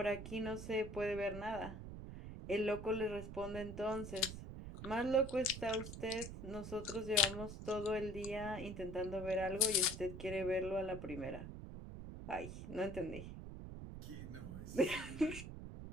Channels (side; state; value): right; noise; rumble, 9 dB below the sound